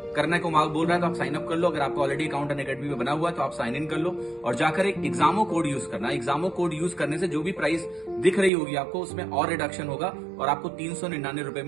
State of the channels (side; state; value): left; drops out; at 8.5 s